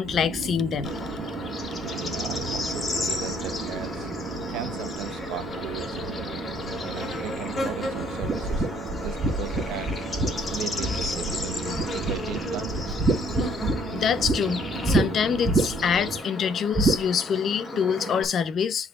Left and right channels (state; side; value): normal; both; correlation 0.63